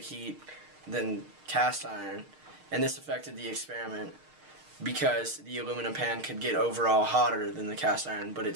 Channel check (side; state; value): left; late; 6.5 ms